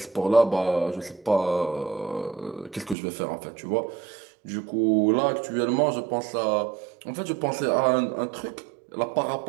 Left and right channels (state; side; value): drops out; left; at 3.0 s